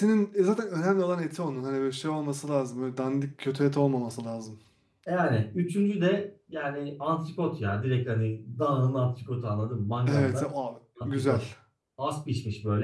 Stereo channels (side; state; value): both; identical; correlation 1.00